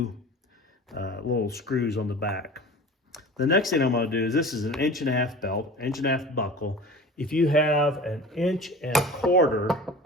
little screws on the back. The next thing I'm going to do is, this is an 1.5-inch belt, 1.5-inch buckle. If you have an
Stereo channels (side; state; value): both; normal; correlation 0.38